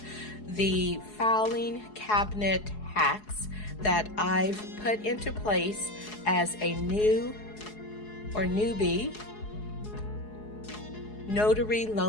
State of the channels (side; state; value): right; late; 4.7 ms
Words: the filing cabinet hacks that I've put into place as a new or newbie notary